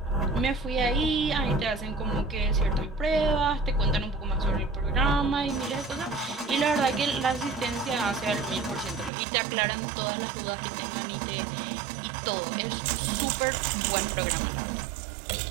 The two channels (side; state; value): left; drops out; at 9.1 s